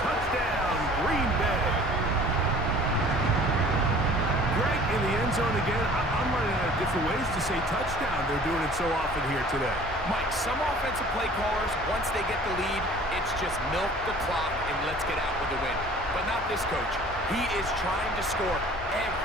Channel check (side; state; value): both; normal; correlation 0.48